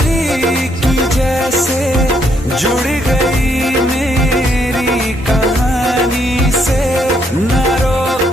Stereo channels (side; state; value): both; normal; correlation 0.72